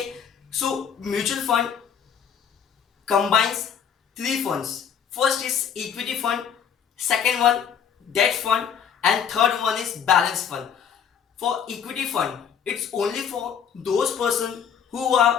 so mutual fund combines three funds. First is equity fund, second one debt fund, and third one is balance fund. For equity fund, it's only for those persons who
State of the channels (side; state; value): right; quieter; 7.8 dB